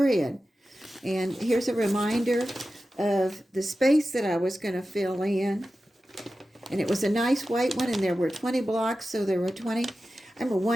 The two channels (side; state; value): both; normal; correlation 0.93